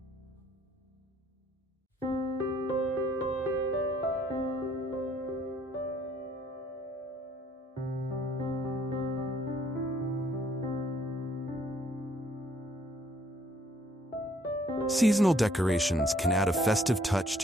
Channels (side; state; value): both; normal; correlation 0.63